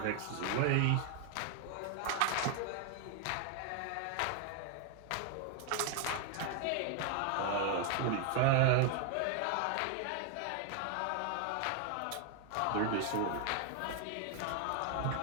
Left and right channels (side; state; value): both; different; correlation 0.00